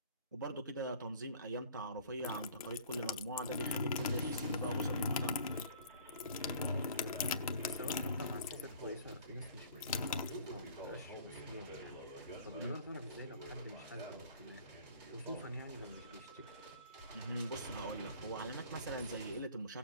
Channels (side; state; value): both; inverted; correlation -0.49